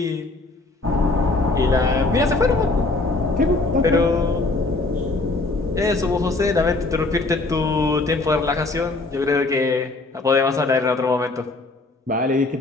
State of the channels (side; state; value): right; quieter; 3.2 dB